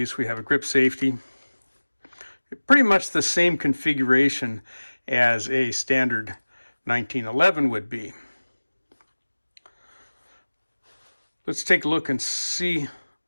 We have a grip safety. Pretty much the same configuration as a standard 1911 would be. Let's take a look and see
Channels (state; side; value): inverted; both; correlation -1.00